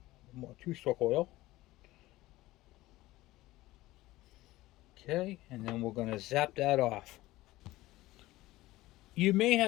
more 2-stroke oil. Okay, and then we're going to zap that off. You may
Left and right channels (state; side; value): quieter; right; 17.8 dB